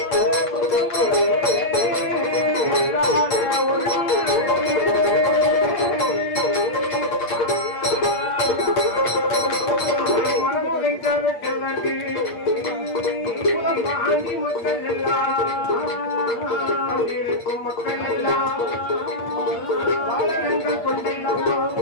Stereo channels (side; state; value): right; late; 8.5 ms